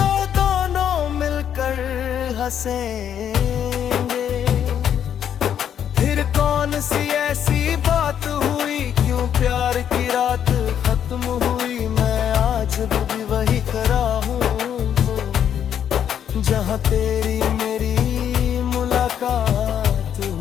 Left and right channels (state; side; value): quieter; right; 9.2 dB